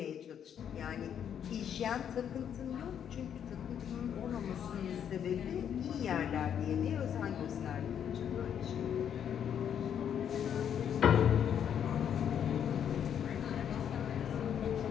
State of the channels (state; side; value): quieter; right; 8.8 dB